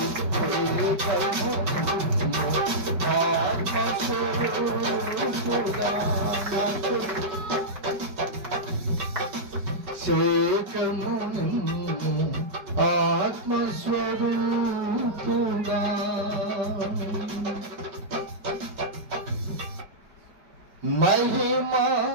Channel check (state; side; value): late; left; 5.2 ms